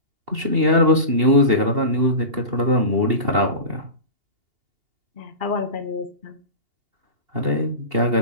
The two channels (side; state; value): left; late; 2.8 ms